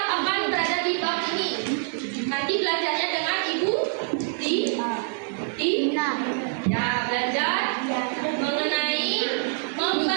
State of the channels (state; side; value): silent; left; 61 dB below the other